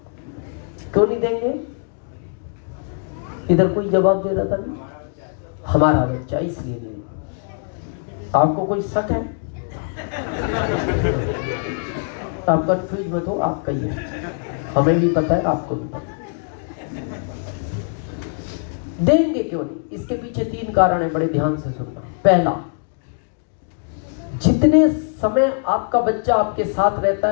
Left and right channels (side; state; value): right; silent; 64 dB below the other